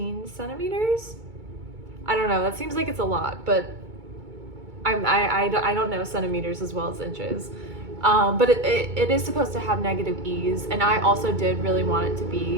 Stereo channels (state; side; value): late; left; 2.2 ms